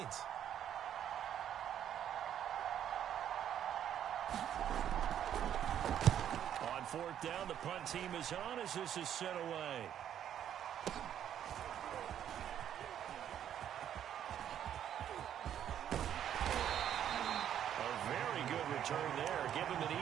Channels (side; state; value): left; quieter; 10.0 dB